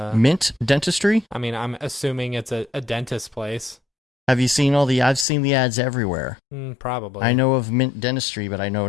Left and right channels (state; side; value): drops out; right; at 5.2 s